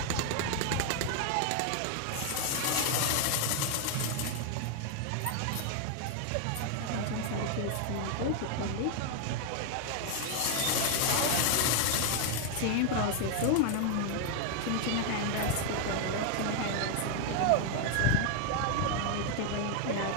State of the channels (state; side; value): different; both; correlation 0.01